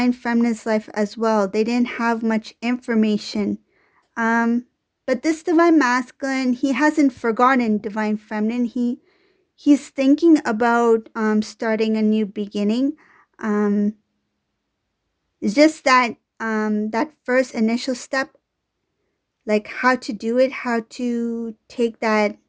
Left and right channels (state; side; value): identical; both; correlation 1.00